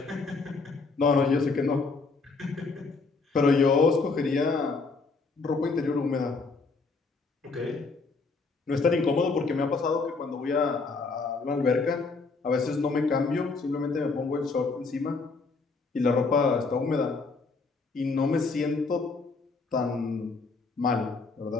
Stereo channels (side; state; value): right; quieter; 4.1 dB